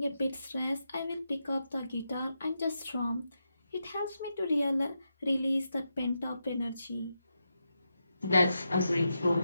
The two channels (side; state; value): both; inverted; correlation -0.87